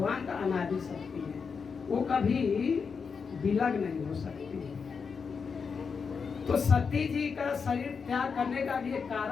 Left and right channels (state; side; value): quieter; right; 5.7 dB